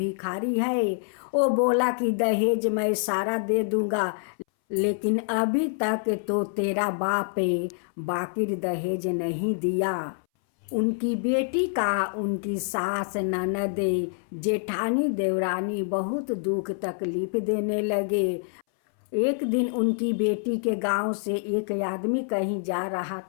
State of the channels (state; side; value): silent; right; 61 dB below the other